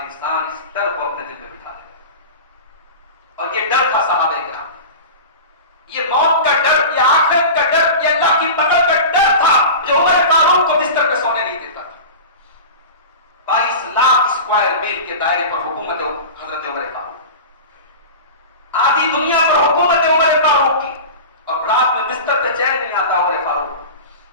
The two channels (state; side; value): inverted; both; correlation -0.31